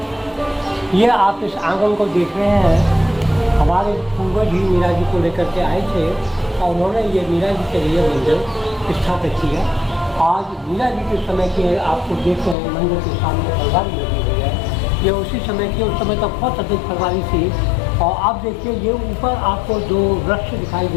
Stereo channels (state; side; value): drops out; right; at 12.6 s